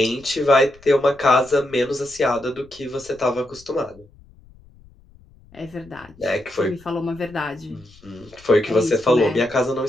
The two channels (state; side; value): noise; left; rumble, 26 dB below the sound